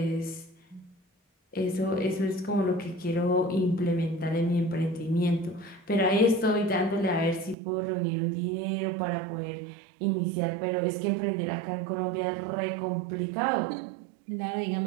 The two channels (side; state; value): left; drops out; at 7.6 s